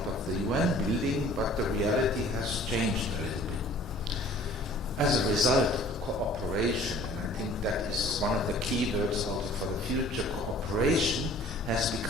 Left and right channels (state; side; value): normal; both; correlation 0.51